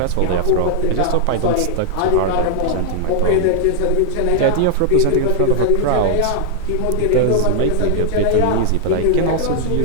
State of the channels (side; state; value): both; different; correlation 0.00